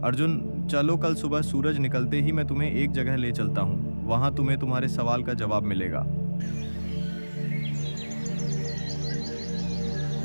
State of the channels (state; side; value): inverted; both; correlation -1.00